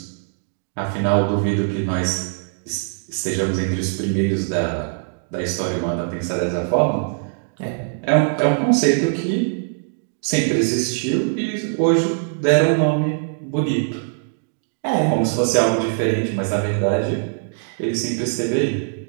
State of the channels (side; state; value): left; silent; digital silence